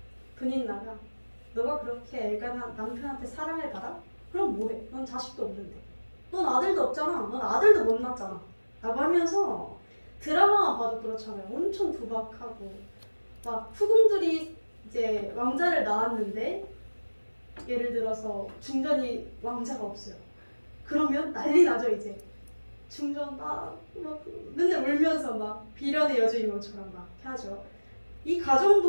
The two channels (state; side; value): inverted; both; correlation -1.00